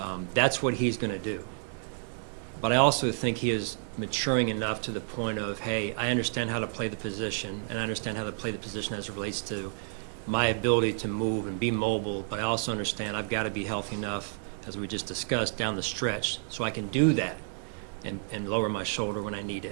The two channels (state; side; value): silent; left; digital silence